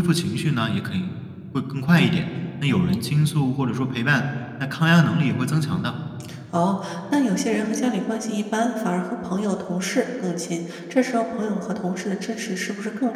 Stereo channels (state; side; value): identical; both; correlation 1.00